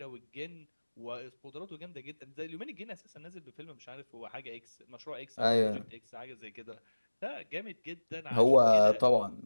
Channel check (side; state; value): both; inverted; correlation -1.00